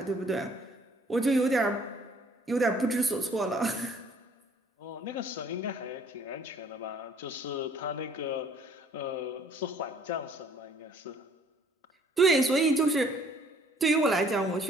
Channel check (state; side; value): normal; both; correlation 0.59